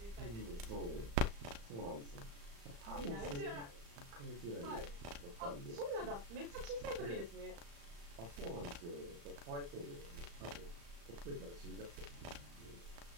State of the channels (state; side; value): late; left; 35 ms